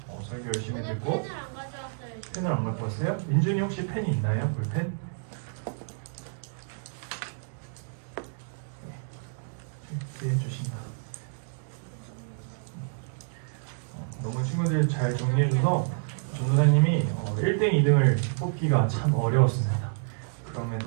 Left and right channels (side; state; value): left; silent; digital silence